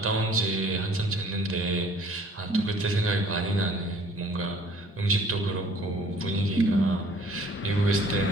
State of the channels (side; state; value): both; normal; correlation 0.55